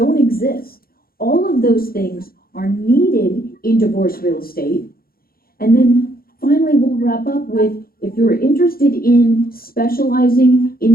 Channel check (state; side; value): late; right; 0.43 ms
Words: exist. All of those things are needed in divorce real estate. And then finally, we'll wrap up with, if you're interested in specializing in